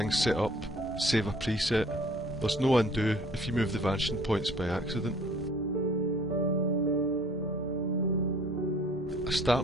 set up, save a preset. There's no undo if you move the vanishing points by accident. I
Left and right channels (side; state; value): both; normal; correlation 0.54